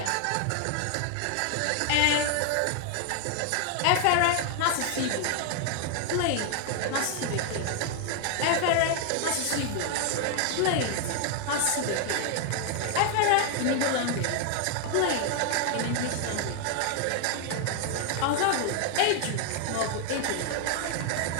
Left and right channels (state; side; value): different; both; correlation 0.00